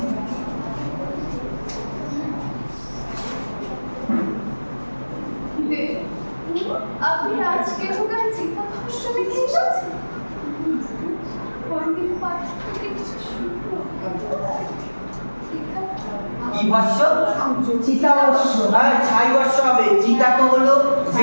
আপনি আজকে ওখানে চিন্তা ভাষ্য লিখে এসেছেন। পণ্ডিত পাঠ থেকে কিছু শুনবো। কি ভাষ্য? চিতা ভাষ্য। আর ছাই ভাষ্য হবে। চিতা তো হলো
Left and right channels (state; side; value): inverted; both; correlation -1.00